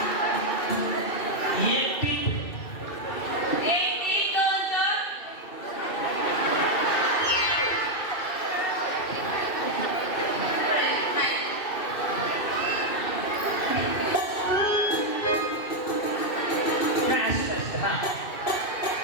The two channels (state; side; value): late; right; 2.5 ms